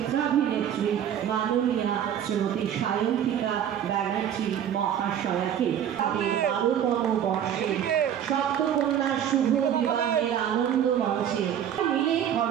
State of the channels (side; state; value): left; quieter; 9.7 dB